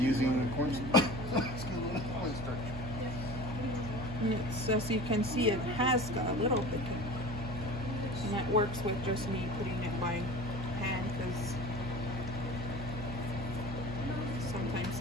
cornstarch. And it's, as you can see, it has got a little bit. And that works with just me putting it by hand because sometimes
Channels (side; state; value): right; noise; hum, 7 dB below the sound